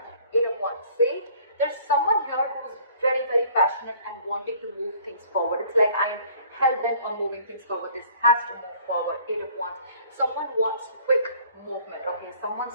Eight of Wands. See, there's someone here who's very, very passionate and wanting to move things forward. It's like I'm hell-bent on moving things forward. This has to move forward. Eight of Wands. Someone wants quick movement, okay?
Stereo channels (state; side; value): inverted; both; correlation -0.54